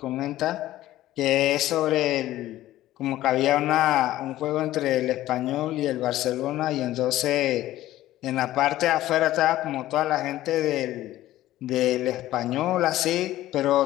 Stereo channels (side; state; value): right; quieter; 14.8 dB